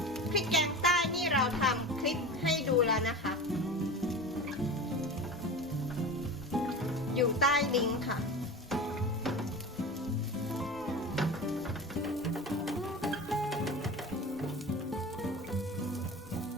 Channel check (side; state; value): both; normal; correlation 0.31